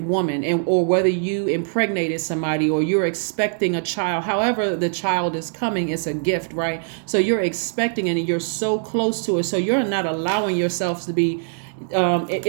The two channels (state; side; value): silent; left; digital silence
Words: woman, and or whether you impregnated somebody or you're expecting a child. However the child is coming, it's a gift, right? So you're expecting it and you're so close to it. So you're not allowing yourself to be